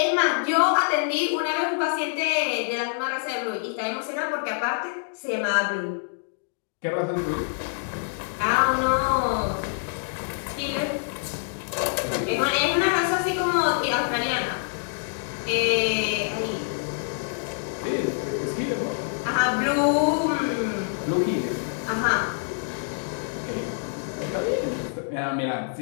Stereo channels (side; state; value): right; silent; digital silence